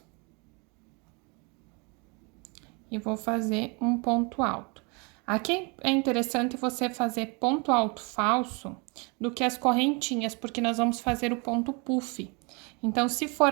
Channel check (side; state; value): left; quieter; 31.3 dB